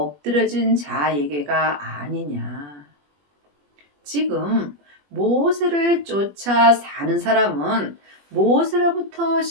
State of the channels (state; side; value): late; left; 21 ms